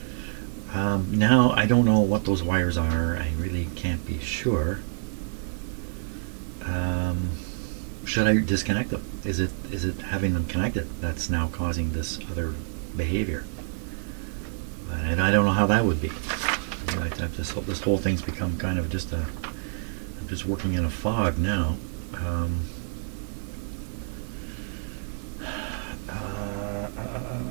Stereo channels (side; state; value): left; silent; digital silence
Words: Now I don't know what those wires are. I really can't be sure. Should I disconnect them? Is it having them connected that's now causing this other behavior? And I don't know how that would be. This whole thing's become kind of just I'm just working in a fog now.